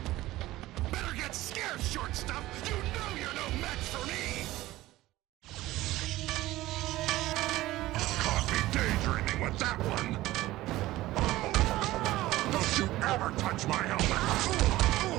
Better get scared, short stuff! You know you're no match for me! Caught me daydreaming with that one! ever touch my helmet!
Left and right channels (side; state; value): left; quieter; 17.0 dB